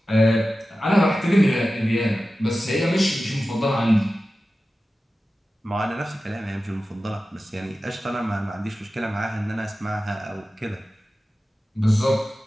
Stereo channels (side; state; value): both; normal; correlation 0.94